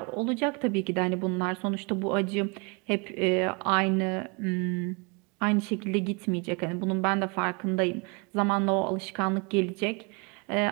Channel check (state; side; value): quieter; left; 31.5 dB